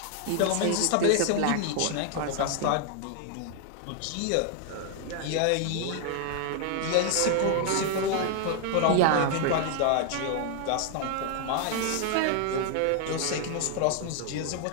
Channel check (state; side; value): different; both; correlation 0.00